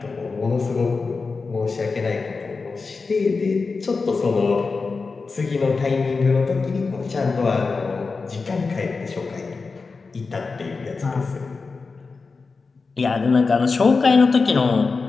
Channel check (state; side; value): quieter; right; 4.4 dB